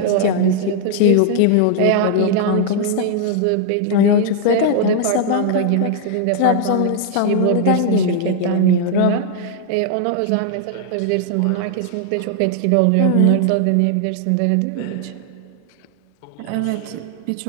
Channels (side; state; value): both; different; correlation 0.00